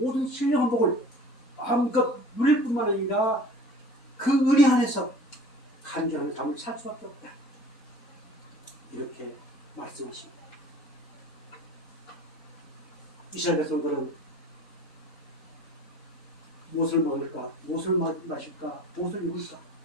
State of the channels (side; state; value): both; normal; correlation 0.45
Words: 신령한 복을 마음껏 누릴 뿐만 아니라 그 은혜 안에서 간절한 삶을 살 수밖에 없다. 이렇게 말씀하십니다. 이스라엘 백성들은 무엇을 먹을까, 무엇을 마실까, 무엇을 입을까